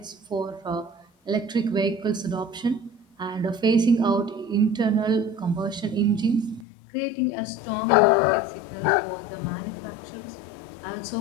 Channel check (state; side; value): drops out; right; at 6.7 s